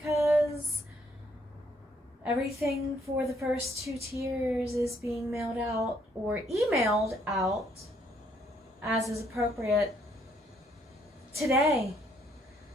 everything for the first 2 tiers is being mailed out or emailed out as is appropriate today.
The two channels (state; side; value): normal; both; correlation 0.69